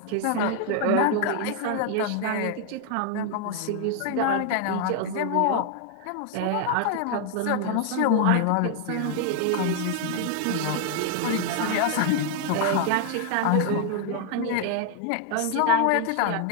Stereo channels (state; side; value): different; both; correlation 0.00